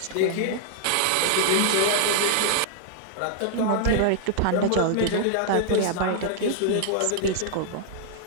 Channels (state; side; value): different; both; correlation -0.01